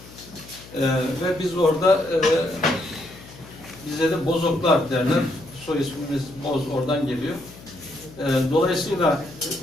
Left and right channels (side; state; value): left; noise; hum, 19 dB below the sound